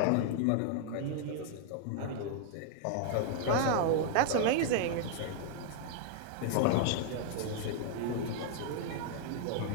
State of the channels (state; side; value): different; both; correlation 0.00